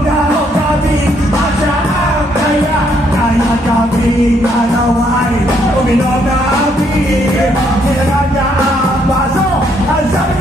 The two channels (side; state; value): both; normal; correlation 0.71